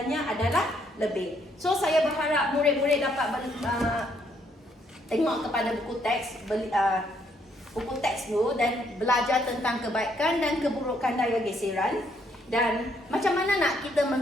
adalah lebih. So saya berharap murid-murid dapat tengok kepada buku teks dulu dan belajar tentang kebaikan dan keburukan daya geseran dan macam mana nak kita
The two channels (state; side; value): normal; both; correlation 0.71